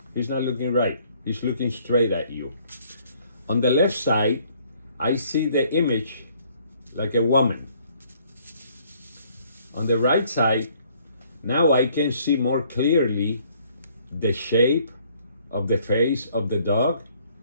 he's not looking right. He's looking straight at you. On the left side, I see the image like a woman. On the right side, now I can see more clearly the shape of the face of the dog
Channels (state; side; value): inverted; both; correlation -0.62